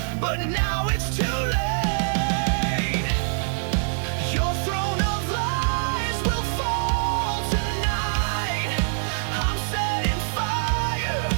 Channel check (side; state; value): left; silent; digital silence